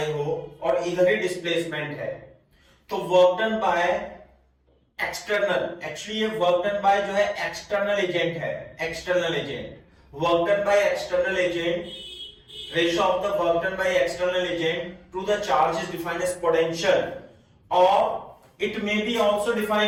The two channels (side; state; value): both; identical; correlation 1.00